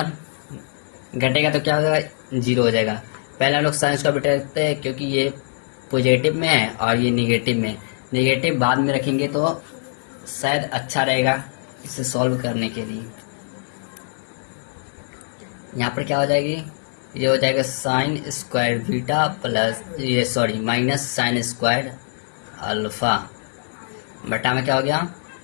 घटेगा तो क्या हो जाएगा, 0 हो जाएगा। पहले हम लोग साइन स्क्वायर बीटा रखते हैं क्योंकि ये पॉजिटिव में है और ये निगेटिव में, निगेटिव बाद में रखेंगे तो शायद अच्छा रहेगा इसे सॉल्व करने के लिए। यहाँ पर क्या हो जाएगी, ये हो जाएगा साइन स्क्वायर बीटा प्लस ये sorry minus sine square alpha बटा में क्या हो गया,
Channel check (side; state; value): right; silent; digital silence